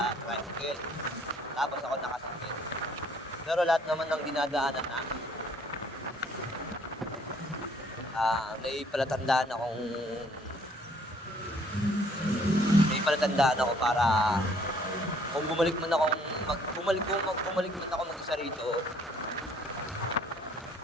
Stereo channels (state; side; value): normal; both; correlation 0.61